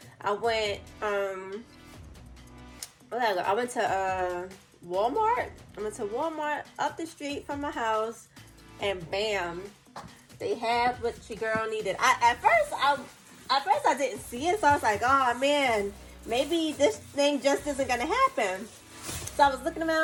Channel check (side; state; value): both; identical; correlation 1.00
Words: I went to Walmart. I went to Walmart up the street from my house, and bam, they had what your girl needed. At first I didn't see it, so I was like, oh man, maybe this thing just isn't gonna happen. So I was looking